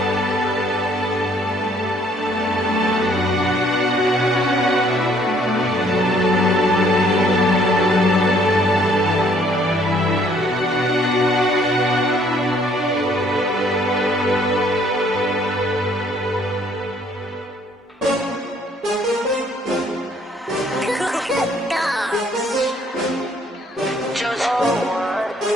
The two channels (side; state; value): both; normal; correlation 0.64